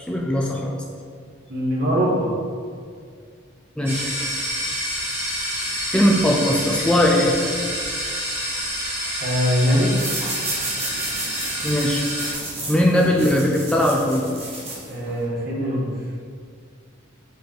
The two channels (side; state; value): both; normal; correlation 0.58